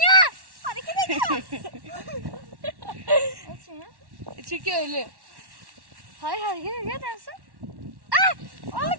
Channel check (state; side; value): late; left; 1.1 ms